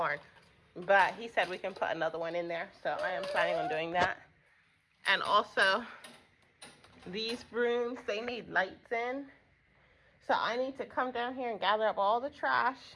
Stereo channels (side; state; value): both; identical; correlation 1.00